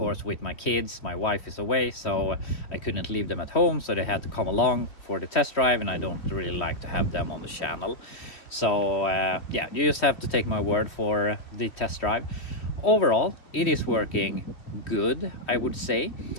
with my kids. My wife is away, so I couldn't leave them at home, so they had to come along for the test drive, and I don't really like to have them on the channel. So yeah, you just have to take my word for the test drive. Overall, it is working good, I would say.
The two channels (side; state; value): right; late; 3.1 ms